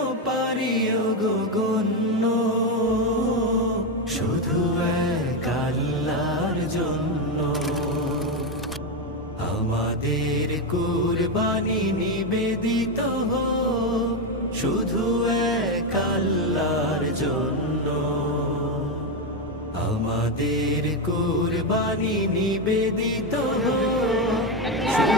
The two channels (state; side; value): normal; both; correlation 0.09